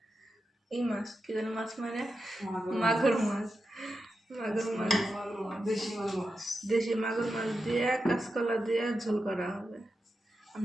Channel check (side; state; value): both; normal; correlation 0.89